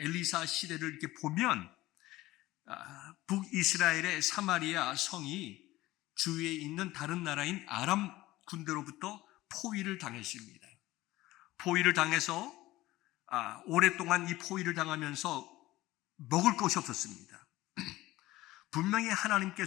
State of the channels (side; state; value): right; quieter; 17.5 dB